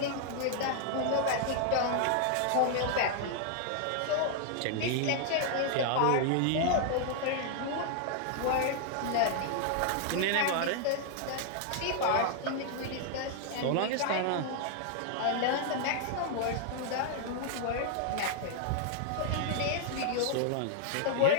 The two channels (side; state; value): both; different; correlation 0.00